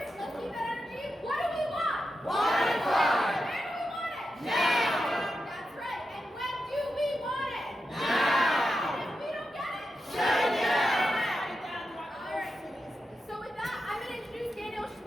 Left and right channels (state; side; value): normal; both; correlation 0.89